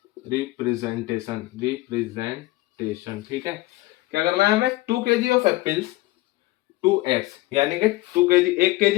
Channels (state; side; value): quieter; right; 19.2 dB